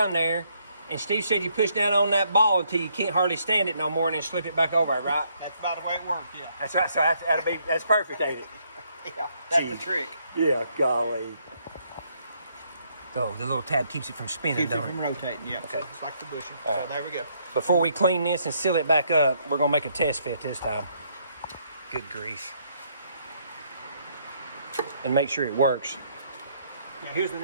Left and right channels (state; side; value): inverted; both; correlation -0.70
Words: there, and Steve said you push down on that ball until you can't hardly stand it no more, and then slip it back over, right? That's about the way it works, yeah. That's right, so that's perfect, ain't it? Yeah, that's Gee. the trick. Yeah, golly. Oh, the little tab keeps it from spinning, Keeps it don't from rotating, yeah. Okay. It's like the bushing. All So right. there we go. Before we clean this and seal it back up, we're gonna make a test fit this time. Good grief. And make sure it works. Now here's the